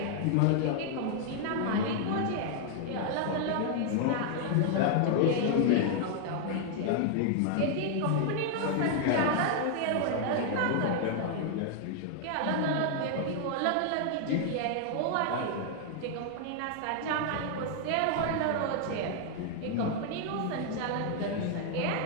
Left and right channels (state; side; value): different; both; correlation 0.00